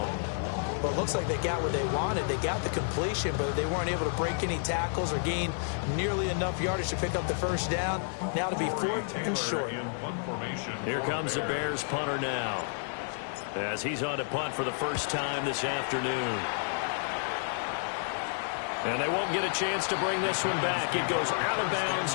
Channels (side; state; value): right; silent; digital silence